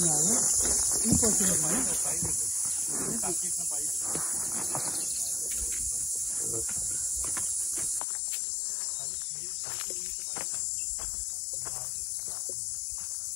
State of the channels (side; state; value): right; drops out; at 8.0 s